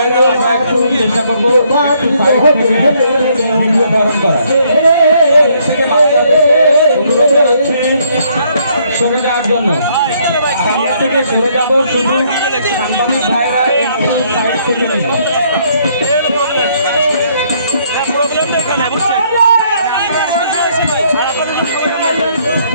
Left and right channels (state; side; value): inverted; both; correlation -0.68